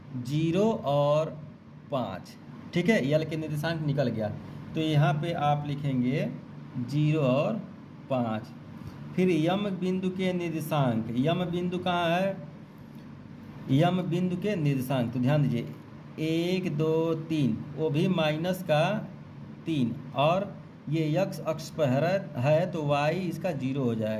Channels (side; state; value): both; identical; correlation 1.00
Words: 0 और 5। ठीक है, यल के निर्देशांक निकल गया, तो यहाँ पे आप लिखेंगे 0 और 5। फिर यम बिंदु के निर्देशांक, यम बिंदु कहाँ है, यम बिंदु के निर्देशांक, तो ध्यान दीजिए 1 2 3, वो भी माइनस का 3, और ये x अक्ष पर है, तो y इसका 0 हो